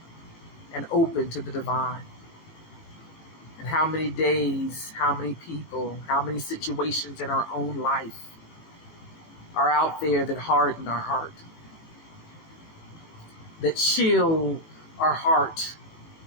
and open to the divine. And how many days, how many people, how many situations in our own life are out there that harden our heart, that chill our heart?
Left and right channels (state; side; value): late; right; 18 ms